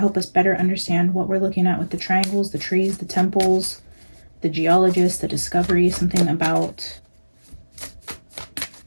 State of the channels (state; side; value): inverted; both; correlation -1.00